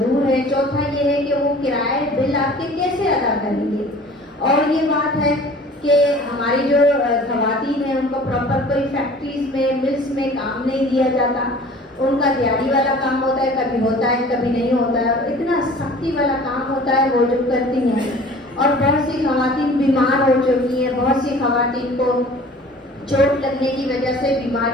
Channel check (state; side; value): normal; both; correlation 0.46